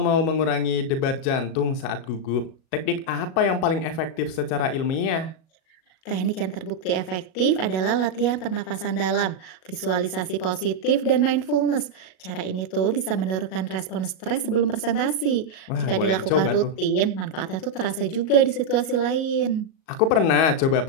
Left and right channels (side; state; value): right; late; 37 ms